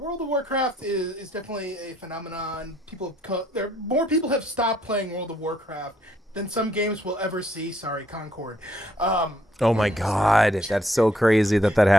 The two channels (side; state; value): both; normal; correlation 0.69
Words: of Warcraft is definitely a phenomenon. More people have stopped playing World of Warcraft than some games will ever see. Sorry, Concord. Oh my God, that's so crazy that